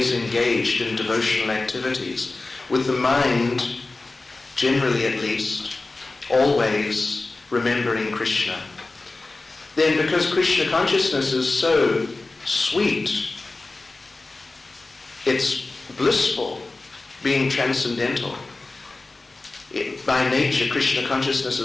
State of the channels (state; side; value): quieter; right; 3.3 dB